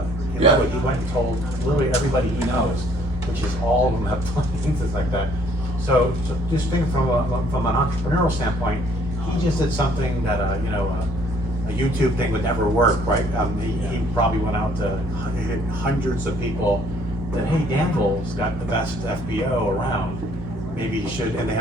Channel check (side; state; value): both; normal; correlation 0.62